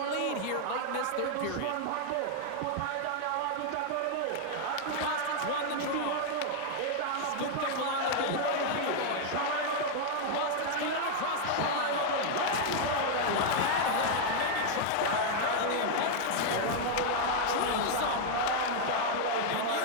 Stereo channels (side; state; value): both; different; correlation 0.00